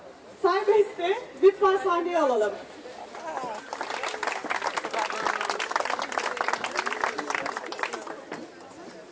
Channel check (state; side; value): identical; both; correlation 1.00